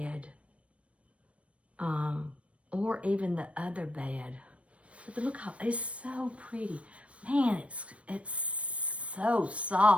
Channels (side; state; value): left; late; 0.063 ms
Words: Or even the other bed. But look how, it's so pretty. Man, it's so